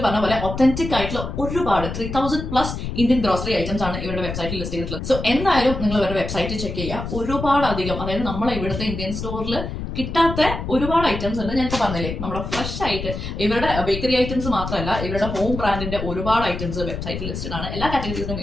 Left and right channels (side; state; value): left; noise; rumble, 6 dB below the sound